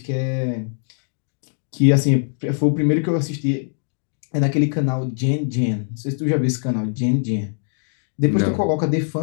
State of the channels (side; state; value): right; silent; 64 dB below the other